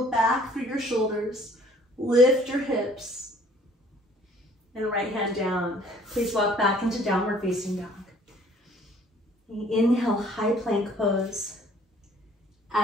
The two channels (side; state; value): both; normal; correlation 0.57